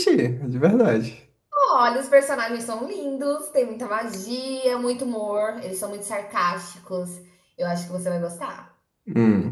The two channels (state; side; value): identical; both; correlation 1.00